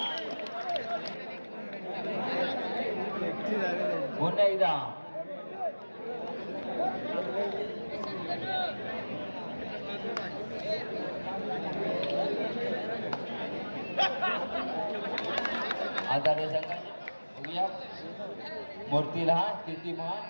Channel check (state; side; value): inverted; both; correlation -1.00